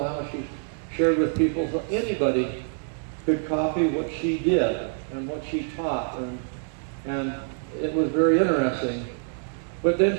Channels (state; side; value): silent; left; digital silence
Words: how she shared with people, so anybody could copy what she did and what she taught, and it was very interesting. But